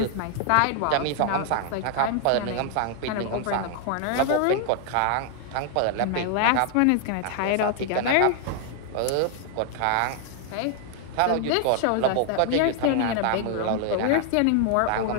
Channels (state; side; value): different; both; correlation 0.00